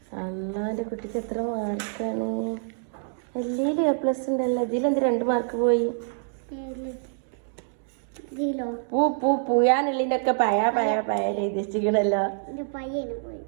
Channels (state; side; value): silent; left; digital silence